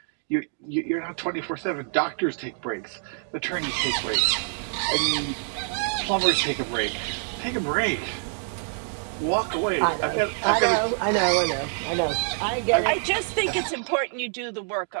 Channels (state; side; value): silent; left; 61 dB below the other